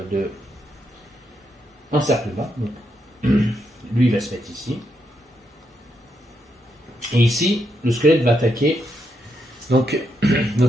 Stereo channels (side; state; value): both; normal; correlation 0.80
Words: encerclement. Donc, lui, il va se mettre ici. Et ici, le squelette va attaquer donc